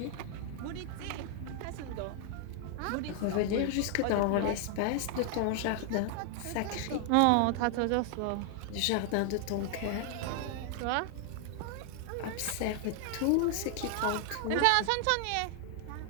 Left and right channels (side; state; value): both; different; correlation 0.00